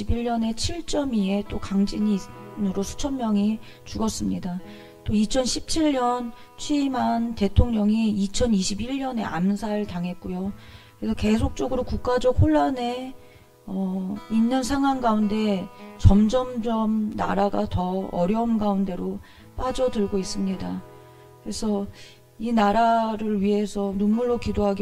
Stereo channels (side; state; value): both; identical; correlation 1.00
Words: 7.2의 또 강진으로 수천 명이 죽었습니다. 또 2017년 취임한 대통령이 2021년에 암살당했고요. 그래서 계속적으로 국가적 혼란에 있는 상황 가운데 점점점 나라가 더 어려움 가운데로 빠져들고 있습니다. 그래서 이 나라를 위해서 눈물로